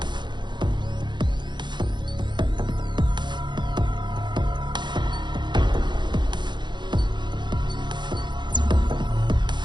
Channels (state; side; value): late; left; 0.22 ms